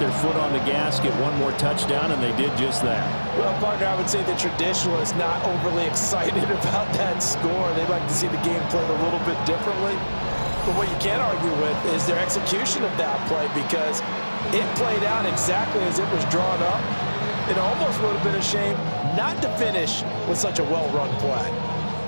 foot on the gas, get one more touchdown, and they did just that. Well, partner, I would say the traditionalists not overly excited about that score. They'd like to see the game played a little bit differently. But what you can't argue with is their execution of that play, because it played out exactly as it was drawn up. It almost would have been a shame not to finish with such a well-run play.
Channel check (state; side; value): inverted; both; correlation -1.00